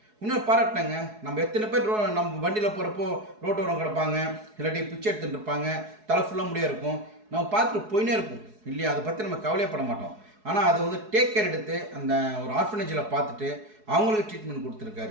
இன்னும் பாராட்டினாங்க. நம்ம எத்தனை பேர் நம்ம வண்டியில் போகிறப்போ ரோட்டோரம் கிடப்பாங்க, இல்லாட்டி பிச்சை எடுத்துகிட்டு இருப்பாங்க, தலை ஃபுல்லாக முடியாக இருக்கும், நம்ம பார்த்துட்டு போயினே இருக்கும் இல்லையா? அதை பற்றி நம்ம கவலையப்பட மாட்டோம். ஆனால் அதை வந்து டேக் கேர் எடுத்து அந்த ஒரு ஆர்ஃபனேஜில் பார்த்துட்டு அவங்களுக்கு ட்ரீட்மெண்ட்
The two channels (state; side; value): late; left; 4.7 ms